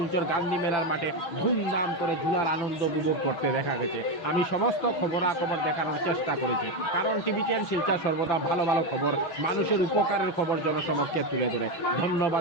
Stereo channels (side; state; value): right; late; 6.1 ms